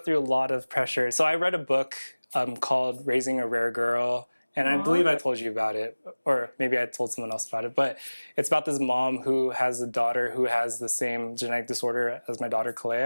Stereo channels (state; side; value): inverted; both; correlation -1.00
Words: a lot of pressure. So I read a book called Raising a Rare Girl. And I believe I told you about it, or maybe I told someone else about it, but it's about this mom who has a daughter who has the same genetic disorder as my daughter,